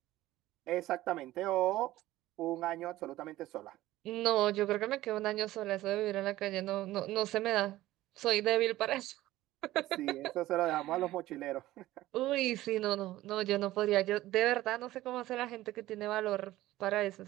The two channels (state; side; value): quieter; left; 16.0 dB